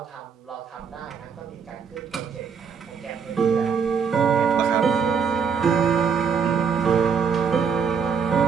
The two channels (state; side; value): quieter; left; 6.3 dB